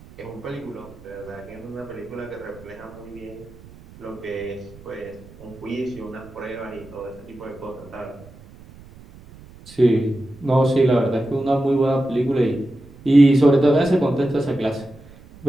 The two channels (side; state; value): right; noise; rumble, 21 dB below the sound